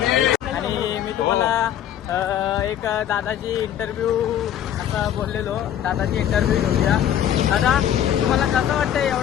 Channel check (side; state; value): right; quieter; 10.6 dB